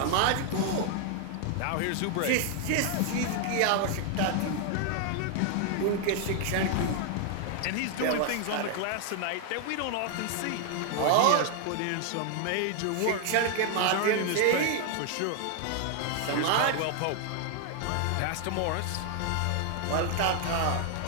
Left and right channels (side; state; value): both; different; correlation 0.00